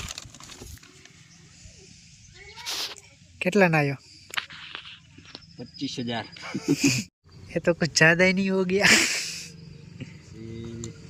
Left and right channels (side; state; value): both; identical; correlation 1.00